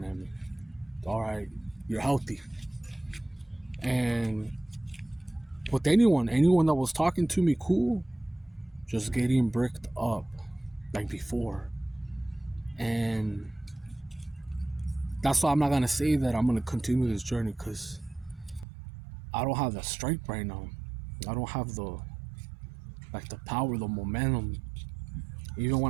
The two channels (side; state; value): left; drops out; at 18.7 s